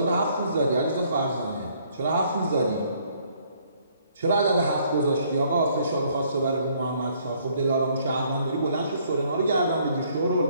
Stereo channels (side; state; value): both; inverted; correlation -0.65